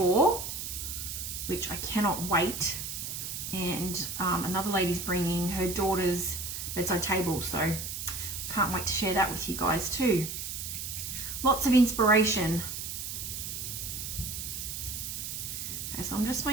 which I cannot wait. And another lady's bringing her daughter's bedside table, so can't wait to share that with you guys too. Lots of inspiration. Okay, so I'm just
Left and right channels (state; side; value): noise; right; hiss, 5 dB below the sound